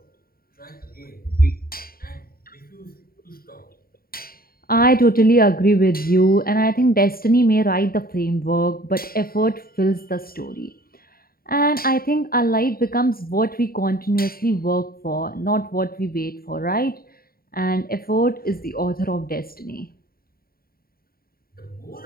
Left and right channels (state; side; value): late; right; 0.43 ms